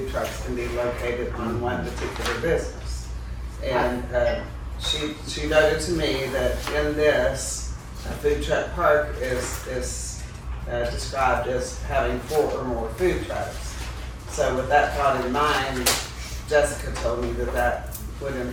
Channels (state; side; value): identical; both; correlation 1.00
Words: trucks can be located on one particular business. And she noted to me that in this, a food truck park is described as having 4 or more food trucks. So with that thought in mind, Jessica told me that would